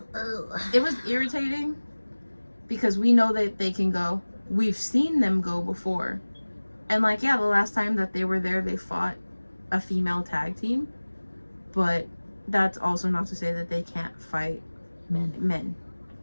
It was irritating because we know that they can go. We've seen them go before. And, like, yeah, the last time that they were there, they fought a female tag team. But that's also not to say that they can't fight men.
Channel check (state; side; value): inverted; both; correlation -1.00